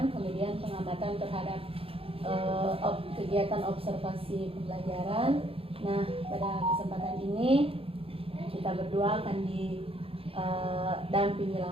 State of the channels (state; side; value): late; left; 0.27 ms